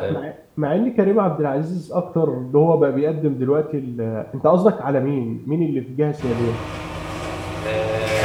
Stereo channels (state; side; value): identical; both; correlation 1.00